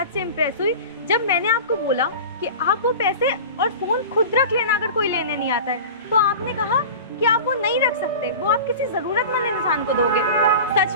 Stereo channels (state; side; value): inverted; both; correlation -0.34